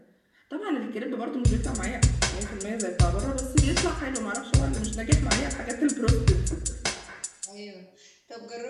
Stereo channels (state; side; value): identical; both; correlation 1.00